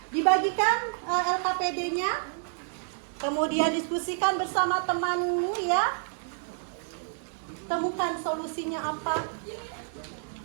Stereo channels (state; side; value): silent; left; digital silence